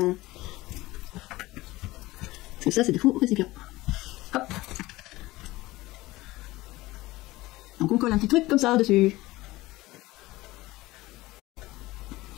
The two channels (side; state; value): right; quieter; 19.0 dB